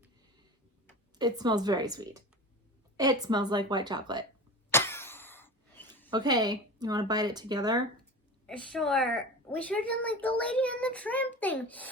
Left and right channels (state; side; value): normal; both; correlation 0.31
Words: It smells very sweet. It smells like white chocolate. Okay, you want to bite it together? Sure. We should have done like the Lady and the Tramp thing.